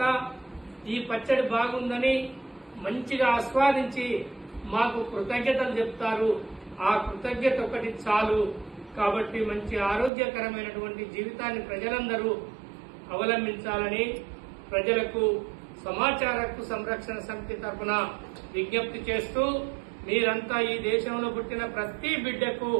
ఈ పచ్చడి బాగుందని మంచిగా ఆస్వాదించి మాకు కృతజ్ఞతలు చెప్తారు. ఆ కృతజ్ఞత ఒకటి చాలు. కాబట్టి మంచి ఆరోగ్యకరమైనటువంటి జీవితాన్ని ప్రజలందరూ అవలంబించాలని ప్రజలకు సమాచార హక్కు సంరక్షణ సమితి తరఫున విజ్ఞప్తి చేస్తూ, మీరంతా ఈ దేశంలో పుట్టిన ప్రతి బిడ్డకు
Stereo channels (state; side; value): drops out; left; at 10.1 s